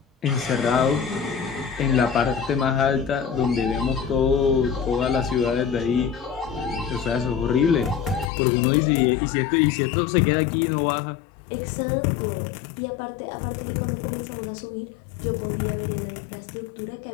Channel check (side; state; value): right; drops out; at 8.3 s